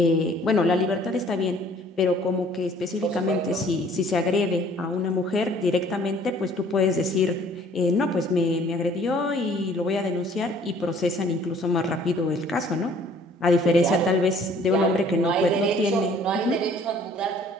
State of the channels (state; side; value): normal; both; correlation 0.56